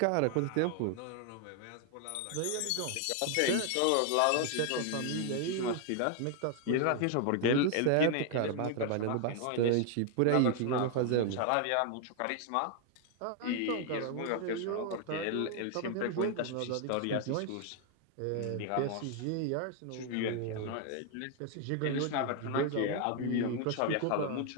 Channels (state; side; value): different; both; correlation 0.00